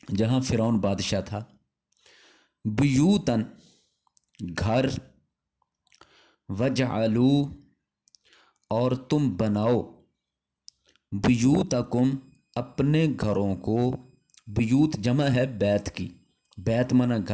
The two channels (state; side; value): identical; both; correlation 1.00